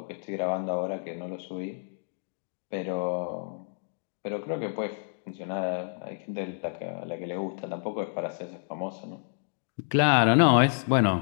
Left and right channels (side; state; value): right; silent; digital silence